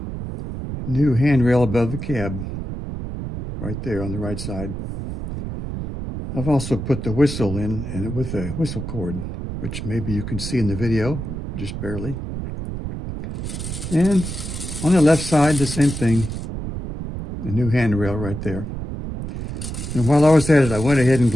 new handrail above the cab, right there on the right side. I've also put the whistle in, and with a whistle cord, which maybe you can see in the video, just barely. And on the left side, the same thing, a new handrail right there. And while I was at it, I went ahead and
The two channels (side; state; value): right; noise; rumble, 6 dB below the sound